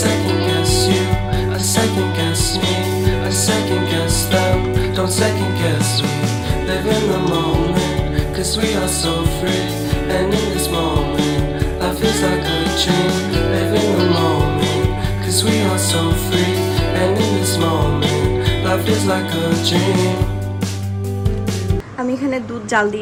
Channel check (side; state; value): both; identical; correlation 1.00